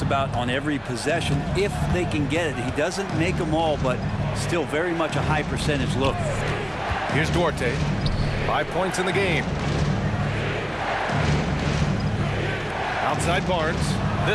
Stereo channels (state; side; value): identical; both; correlation 1.00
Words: about on every possession if they can get it. He doesn't make them all, but still very much a high percentage look. Here's Duarte. 5 points in the game. Outside Barnes.